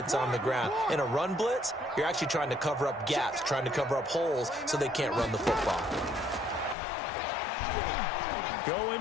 on the ground. In a run blitz, you're actually trying to cover up gaps, trying to cover up holes so they can't run the football. Going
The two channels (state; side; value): drops out; right; at 6.8 s